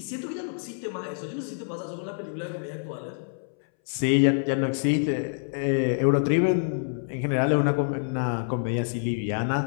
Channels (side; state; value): right; silent; 60 dB below the other